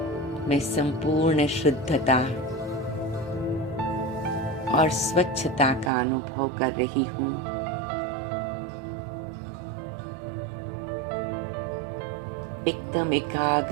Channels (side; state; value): left; drops out; at 5.9 s